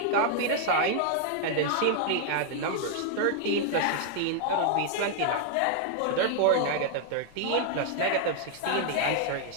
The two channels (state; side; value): different; both; correlation 0.00